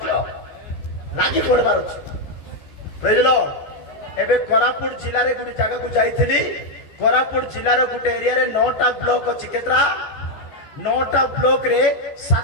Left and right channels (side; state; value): right; late; 15 ms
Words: लागी पड़बार प्रेज लॉर्ड एबे कोरापुट जिल्ला रे गुडी जगह को जाईथिली कोरापुट जिल्ला रे गुटे एरिया रे 9टा ब्लॉक अछि केतरा 9टा ब्लॉक रे